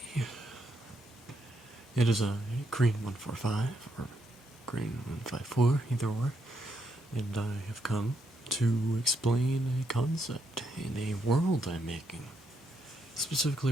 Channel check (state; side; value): normal; both; correlation 0.78